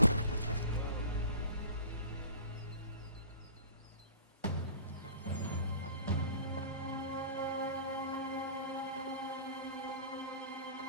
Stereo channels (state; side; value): inverted; both; correlation -0.42